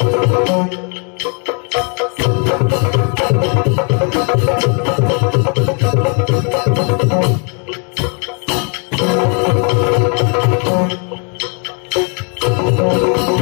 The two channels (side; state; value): right; quieter; 37.5 dB